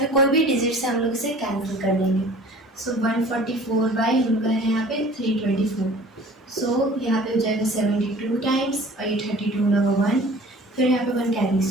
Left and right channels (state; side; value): normal; both; correlation 0.47